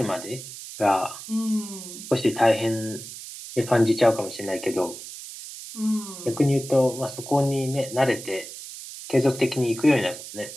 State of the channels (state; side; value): noise; right; hiss, 12 dB below the sound